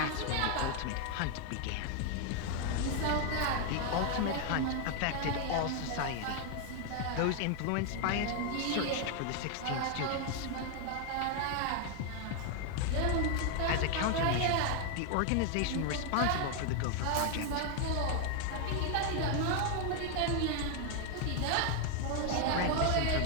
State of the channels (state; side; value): different; both; correlation 0.00